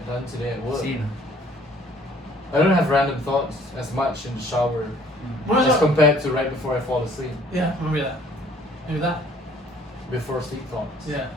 done today at work. Same. I don't have random thoughts as much in the shower What was as that? compared to right before I fall asleep. Yeah, maybe that. Maybe that. Before sleep thoughts. Yeah.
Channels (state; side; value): normal; both; correlation 0.58